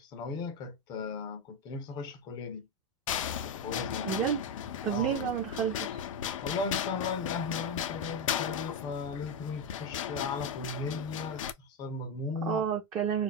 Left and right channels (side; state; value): both; normal; correlation 0.09